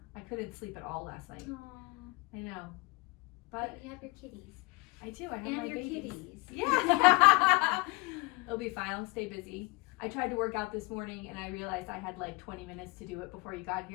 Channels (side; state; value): right; quieter; 24.5 dB